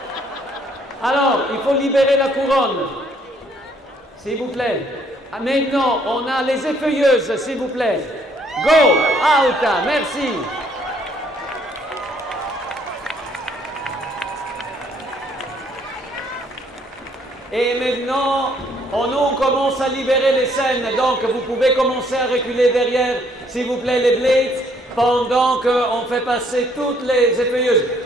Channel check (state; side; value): normal; both; correlation 0.65